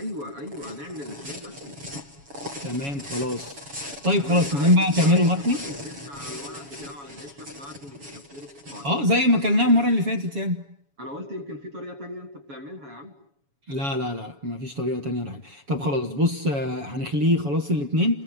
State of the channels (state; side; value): late; left; 7.1 ms